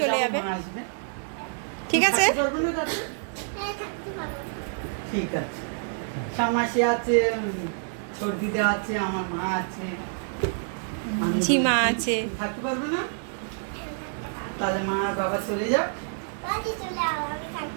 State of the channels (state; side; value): silent; left; digital silence